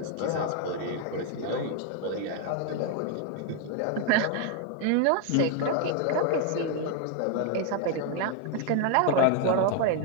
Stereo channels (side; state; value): both; different; correlation 0.00